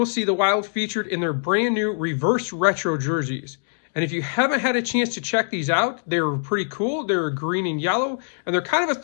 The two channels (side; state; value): right; silent; digital silence